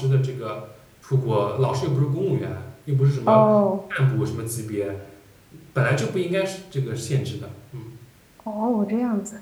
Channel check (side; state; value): both; identical; correlation 1.00